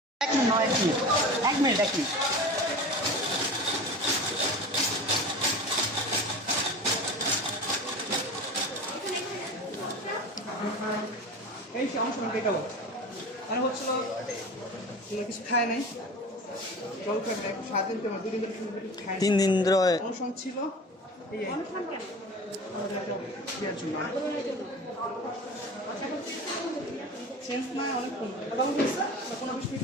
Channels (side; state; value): both; normal; correlation 0.34